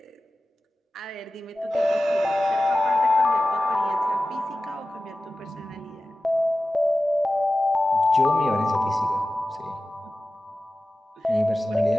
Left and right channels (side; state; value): both; normal; correlation 0.95